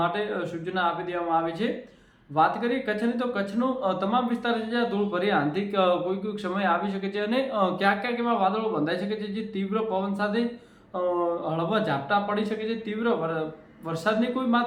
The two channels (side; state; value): both; identical; correlation 1.00